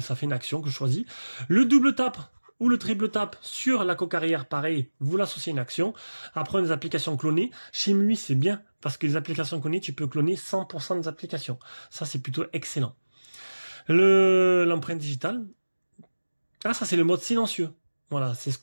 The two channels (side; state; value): both; inverted; correlation -1.00